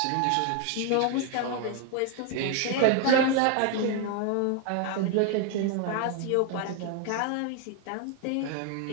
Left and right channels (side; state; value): both; different; correlation 0.01